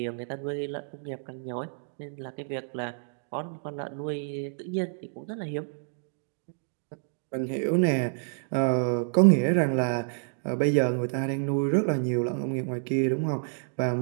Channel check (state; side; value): silent; left; digital silence